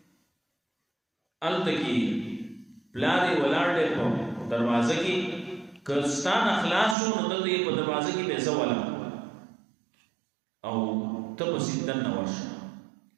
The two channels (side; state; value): left; drops out; at 7.0 s